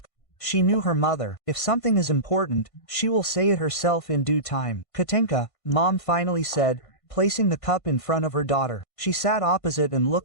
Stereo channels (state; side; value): late; right; 1.5 ms